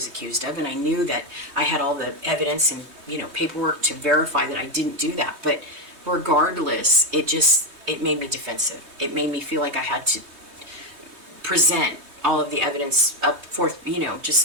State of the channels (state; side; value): late; left; 3.2 ms